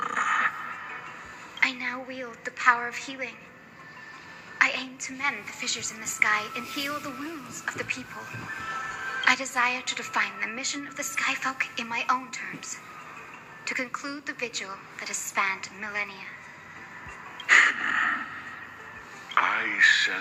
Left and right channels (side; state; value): both; identical; correlation 1.00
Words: I now wield the power of healing. I aim to mend the fissures in the sky and heal the wounds of the people. I desire to define the mission of the skyfolk in my own terms, to conclude the vigil that has spanned millennia. I